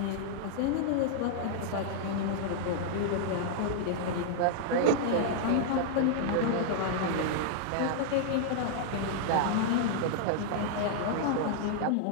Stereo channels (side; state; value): both; different; correlation -0.01